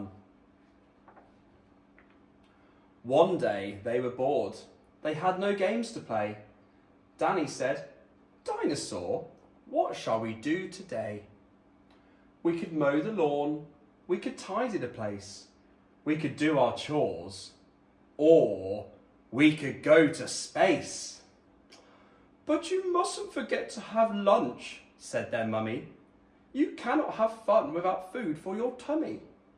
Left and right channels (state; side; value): identical; both; correlation 1.00